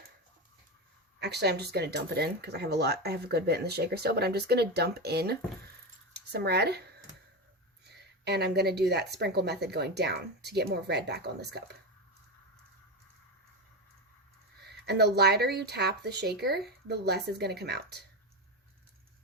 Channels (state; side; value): normal; both; correlation 0.16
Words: Actually, I'm just going to dump it in because I have a good bit in the shaker still, but I'm just going to dump in some red. And I'm going to do that sprinkle method going down to get more red back on this cup. And the lighter you tap the shaker, the less is going to come out.